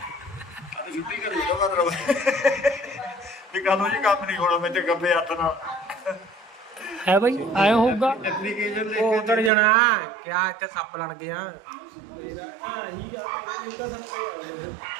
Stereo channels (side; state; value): left; drops out; at 9.5 s